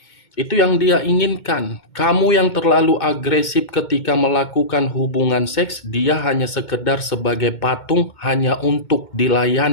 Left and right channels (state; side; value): late; right; 2.2 ms